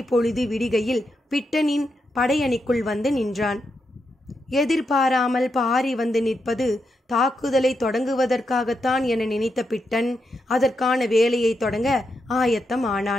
பொழுது விடிகையில் பிட்டனின் படையணிக்குள் வந்து நின்றான். எதிர்பாராமல் பாரி வந்து நிற்பது தாக்குதலை தொடங்குவதற்காகத்தான் என நினைத்த பிட்டன் அதற்கான வேலையை தொடங்க ஆயத்தம்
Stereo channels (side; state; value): both; normal; correlation 0.84